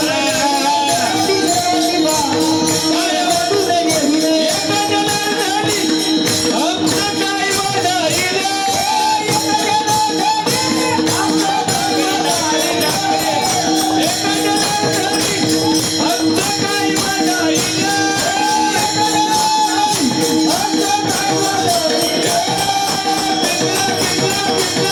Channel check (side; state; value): both; identical; correlation 1.00